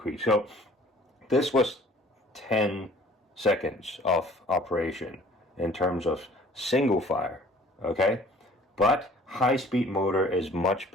So this was 10 seconds of operation in terms of single fire, okay? But high-speed motor is much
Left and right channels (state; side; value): normal; both; correlation 0.53